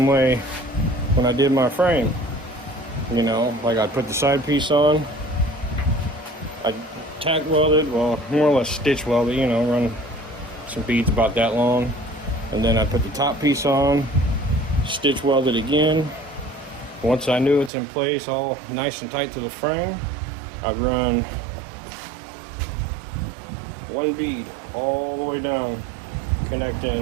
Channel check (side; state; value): left; drops out; at 17.7 s